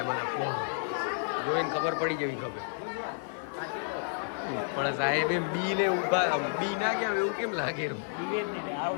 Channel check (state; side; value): silent; right; digital silence